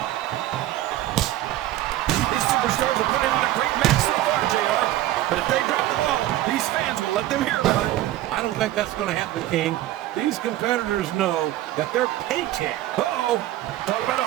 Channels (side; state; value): left; quieter; 14.7 dB